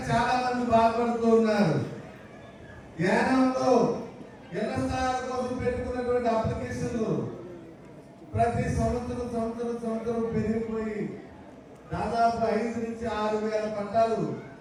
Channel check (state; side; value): identical; both; correlation 1.00